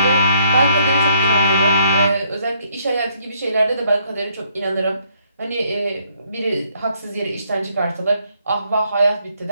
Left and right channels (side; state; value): both; inverted; correlation -0.69